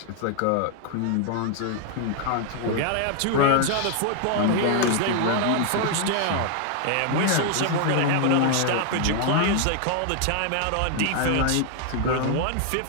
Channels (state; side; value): different; both; correlation 0.00